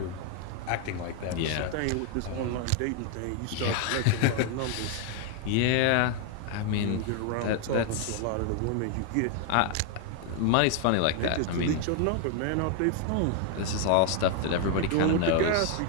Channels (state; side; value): different; both; correlation 0.00